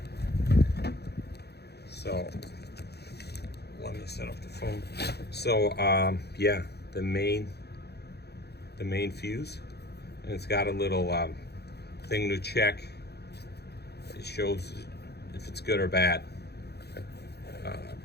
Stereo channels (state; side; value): late; right; 0.48 ms